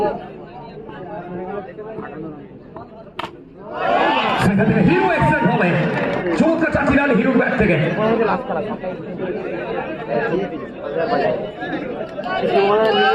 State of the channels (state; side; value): identical; both; correlation 1.00